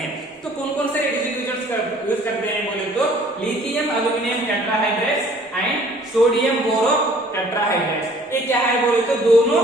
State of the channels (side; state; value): both; normal; correlation 0.55